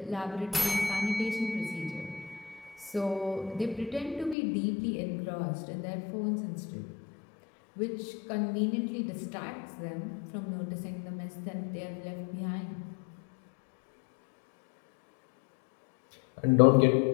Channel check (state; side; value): drops out; right; at 4.4 s